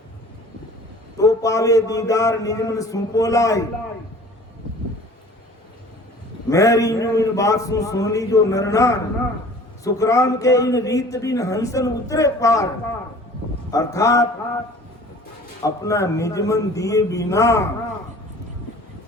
तो पावे दीदार, निज मन सुपो लाई। मेरी इन बात सुन ली जो नरनार, सुखराम के इन रीत बिन हंसन उतरे पार, अर्थात अपना निज मन दिए बिना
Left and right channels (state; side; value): normal; both; correlation 0.47